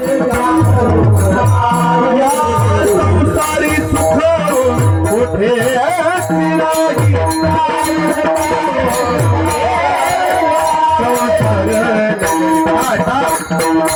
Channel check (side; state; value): both; identical; correlation 1.00